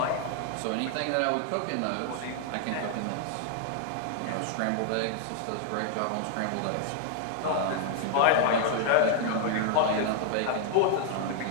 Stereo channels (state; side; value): different; both; correlation 0.00